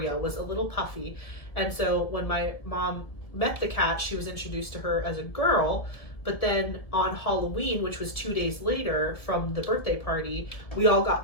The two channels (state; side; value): late; right; 1.7 ms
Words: was a little puffy. And so when my mom met the cat, she was introduced to her as a girl. But then on Halloween, which was 2 days later from the birthday party, we all